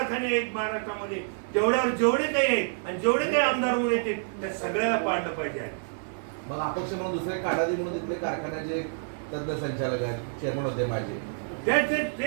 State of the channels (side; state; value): left; silent; digital silence